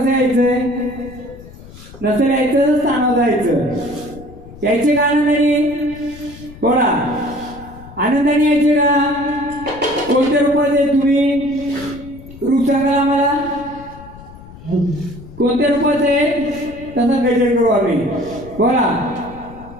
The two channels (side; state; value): left; noise; rumble, 18 dB below the sound